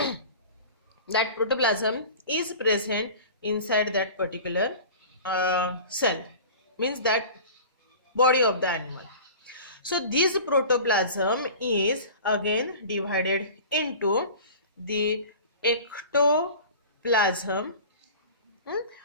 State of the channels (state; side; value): inverted; both; correlation -0.39